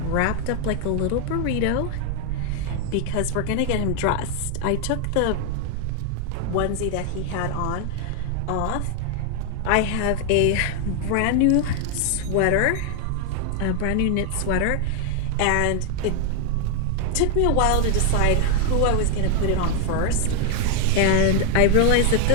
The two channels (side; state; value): both; different; correlation 0.00